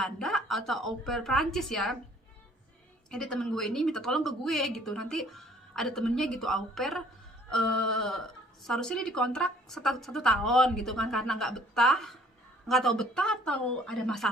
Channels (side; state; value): both; normal; correlation 0.57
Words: atau au pair Prancis ya. Jadi temen gue ini minta tolong ke gue gitu, nanti ada temennya gitu au pair, seharusnya dia dikontrak 1 tahun gitu kan, karena nggak tahu betah atau ada